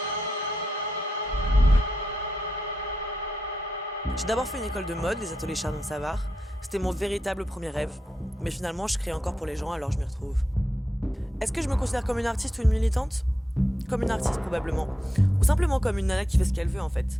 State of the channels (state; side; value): normal; both; correlation 0.86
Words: J'ai d'abord fait une école de mode, les ateliers Chardon-Savard. C'était mon véritable premier rêve. Mais finalement, je crée encore pour les gens, alors je m'y retrouve. Est-ce que je me considère comme une artiste ou une militante? Comme une artiste, probablement. Ou simplement comme une nana qui fait ce qu'elle veut, en fait.